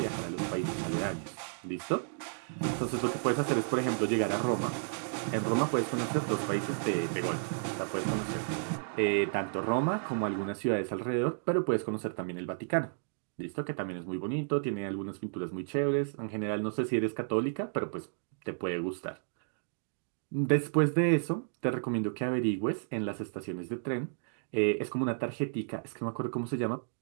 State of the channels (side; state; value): left; silent; digital silence